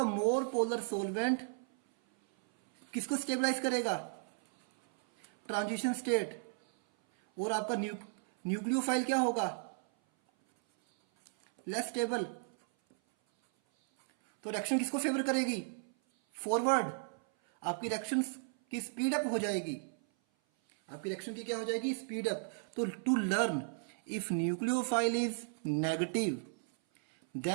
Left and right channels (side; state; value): left; silent; 55 dB below the other